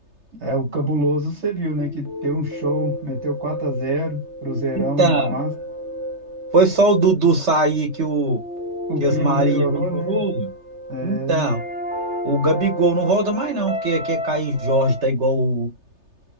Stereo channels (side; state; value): left; late; 3.3 ms